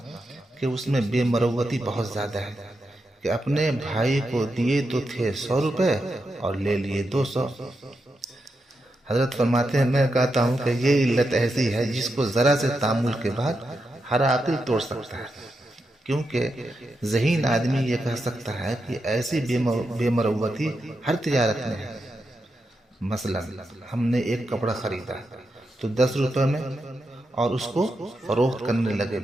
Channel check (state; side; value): normal; both; correlation 0.86